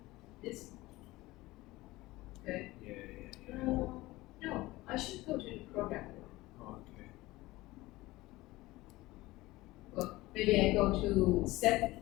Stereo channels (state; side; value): quieter; right; 19.2 dB